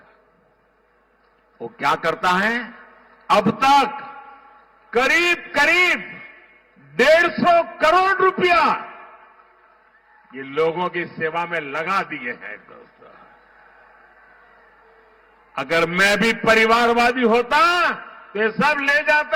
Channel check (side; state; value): both; identical; correlation 1.00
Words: वो क्या करता है, अब तक करीब करीब 150 करोड़ रुपया ये लोगों की सेवा में लगा दिए हैं। दोस्तों, अगर मैं भी परिवारवादी होता तो ये सब ले